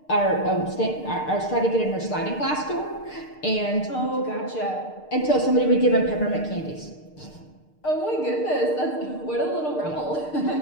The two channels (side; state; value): right; late; 6.6 ms